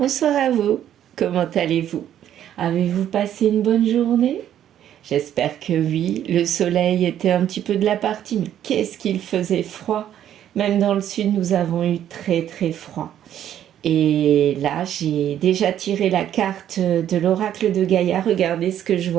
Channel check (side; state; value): left; quieter; 10.7 dB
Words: à vous, comment allez-vous? Avez-vous passé une bonne journée? J'espère que oui, le soleil était un petit peu de la partie, mais qu'est-ce qu'il faisait froid! Même dans le sud, nous avons eu très très froid. Et là, j'ai déjà tiré la carte de l'oracle de Gaïa, regardez ce que je